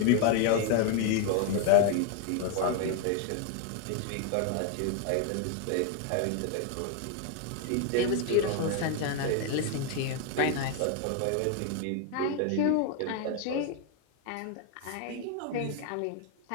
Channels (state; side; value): different; both; correlation 0.01